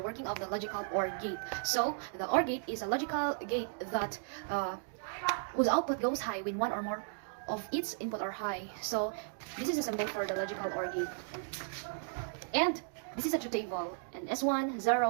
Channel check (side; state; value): left; silent; digital silence